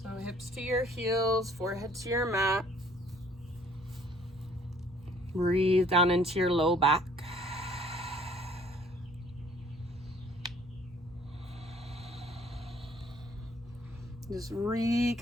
So hips to your heels, forehead to your mat. Breathe down into your low back. Just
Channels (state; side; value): normal; both; correlation 0.58